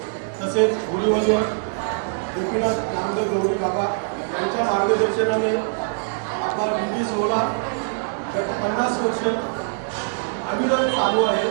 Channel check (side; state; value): left; silent; digital silence